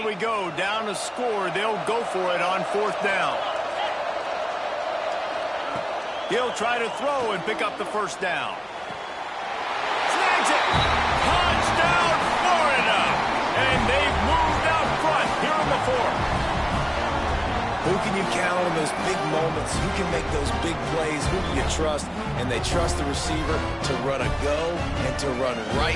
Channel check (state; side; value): identical; both; correlation 1.00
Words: we go, down to score. They'll go for it on fourth down. He'll try to throw and pick up the first down. Snags it! Touchdown, Florida! And they've moved out front here in the fourth. Who can you count on those big moments? Who can make those big plays? Who do you trust? And they trust the receiver to run a go and to run